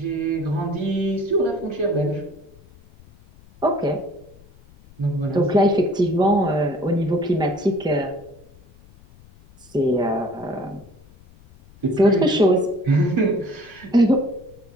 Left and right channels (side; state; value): left; noise; rumble, 25 dB below the sound